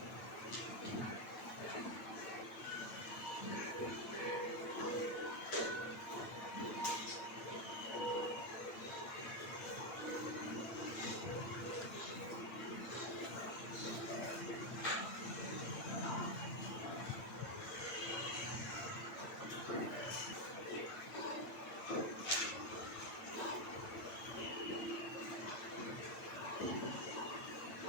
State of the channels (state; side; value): late; right; 8.8 ms